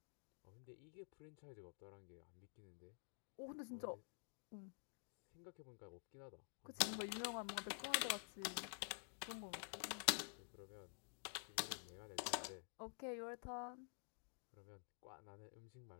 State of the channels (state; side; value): silent; right; digital silence